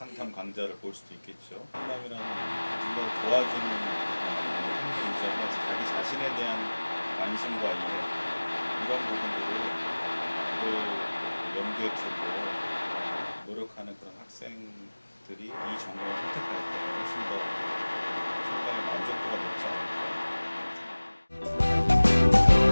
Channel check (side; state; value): both; inverted; correlation -1.00